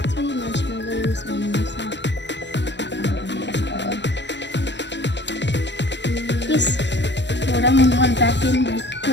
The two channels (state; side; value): late; right; 0.52 ms